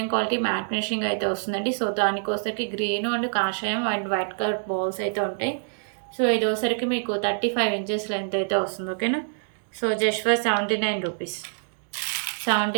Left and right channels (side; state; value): left; silent; digital silence